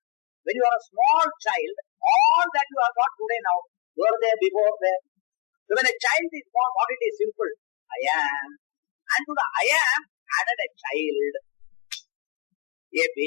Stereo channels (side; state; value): right; quieter; 35.8 dB